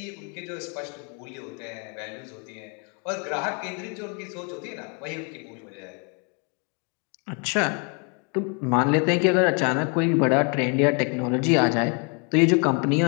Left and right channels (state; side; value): quieter; right; 36.1 dB